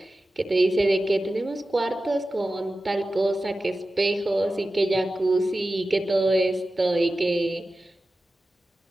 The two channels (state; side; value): normal; both; correlation 0.94